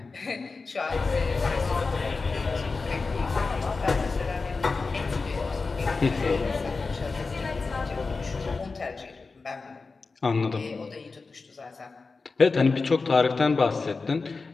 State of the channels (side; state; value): right; quieter; 4.1 dB